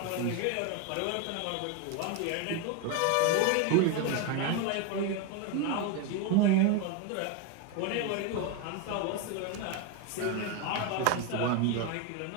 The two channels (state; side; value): different; both; correlation 0.02